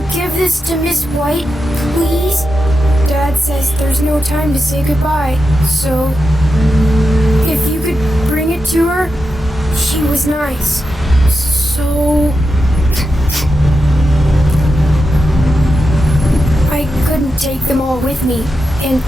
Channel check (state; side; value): normal; both; correlation 0.88